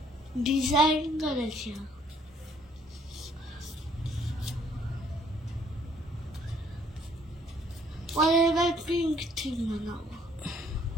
ডিজাইন করেছে। এবার পিঙ্ক থিম বানাবো।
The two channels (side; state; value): both; normal; correlation 0.63